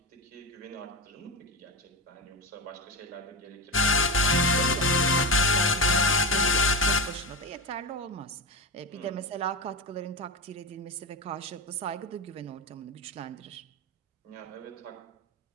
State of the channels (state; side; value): normal; both; correlation 0.19